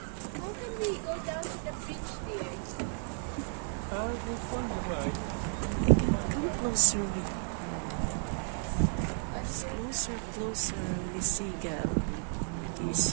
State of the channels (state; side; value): silent; left; 56 dB below the other